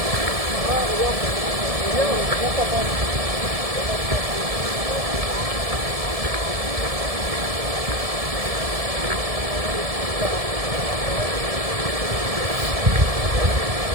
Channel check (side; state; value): left; late; 1.7 ms